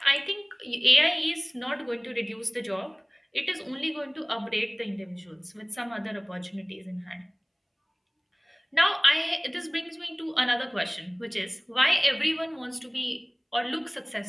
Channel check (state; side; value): identical; both; correlation 1.00